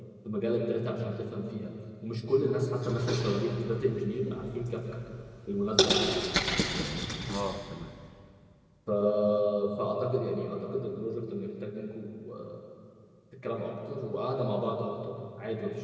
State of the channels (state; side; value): identical; both; correlation 1.00